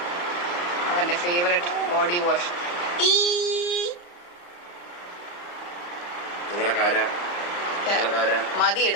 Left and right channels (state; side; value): late; right; 34 ms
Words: അവന്റെ ഫേവറേറ്റ് ബോഡി വാഷ്. മതി